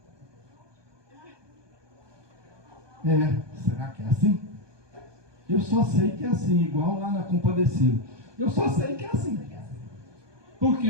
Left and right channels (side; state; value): left; late; 1.2 ms